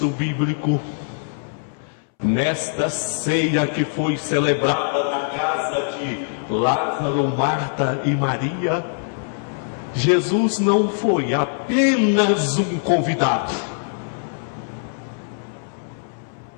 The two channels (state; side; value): silent; right; 64 dB below the other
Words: bíblico, nesta ceia que foi celebrada na casa de Lázaro, Marta e Maria, Jesus não foi apenas um convidado.